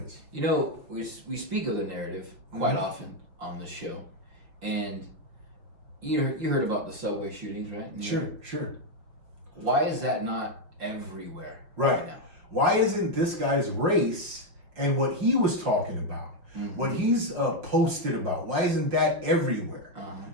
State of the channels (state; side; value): late; left; 5.7 ms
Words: is. We speak of the narrative quite often on this show, and you heard about the subway shootings, right? Sure. Why is that not everywhere Right now? Why isn't this guy's race and what he was talking about, what he's posted about, why isn't that everywhere?